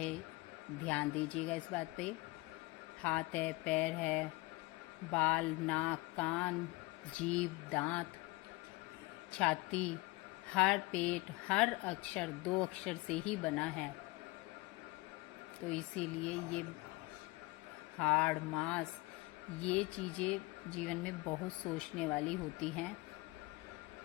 ध्यान दीजिएगा इस बात पे। हाथ है, पैर है, बाल नाक कान जीभ दांत छाती, हर पेट, हर अक्षर 2 अक्षर से ही बना है। तो इसीलिए ये हाड़ मांस, ये चीज़ें जीवन में बहुत सोचने वाली होती हैं।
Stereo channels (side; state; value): right; quieter; 22.0 dB